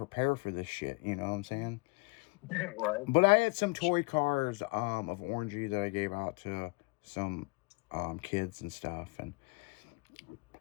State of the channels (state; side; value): quieter; right; 28.1 dB